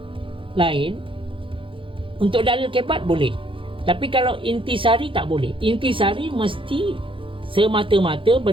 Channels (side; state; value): left; late; 0.25 ms